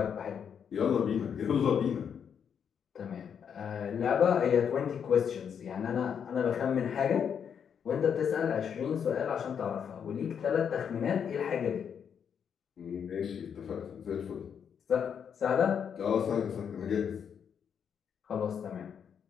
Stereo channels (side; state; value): right; quieter; 7.6 dB